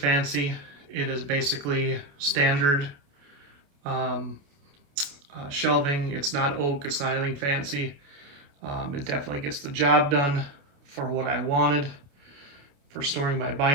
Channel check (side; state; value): left; late; 28 ms